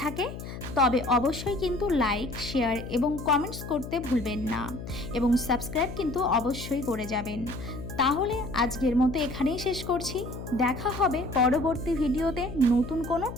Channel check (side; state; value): left; noise; hum, 10 dB below the sound